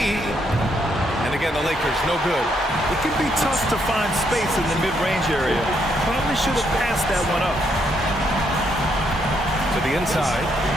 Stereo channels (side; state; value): both; normal; correlation 0.75